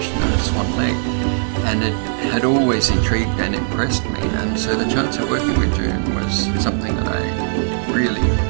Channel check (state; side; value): silent; left; 66 dB below the other